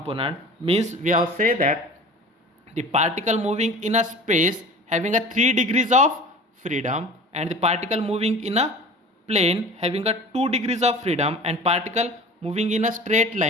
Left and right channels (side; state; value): both; normal; correlation 0.40